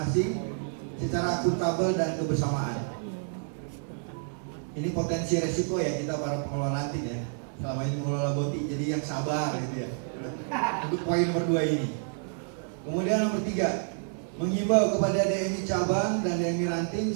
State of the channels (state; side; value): silent; left; 59 dB below the other